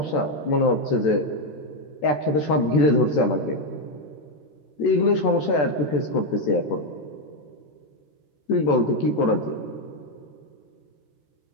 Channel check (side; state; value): right; late; 14 ms